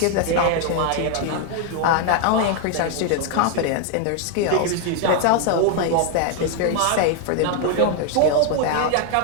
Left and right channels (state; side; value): different; both; correlation 0.01